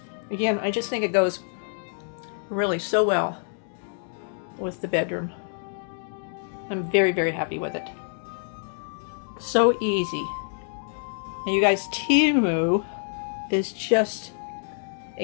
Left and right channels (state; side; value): silent; right; digital silence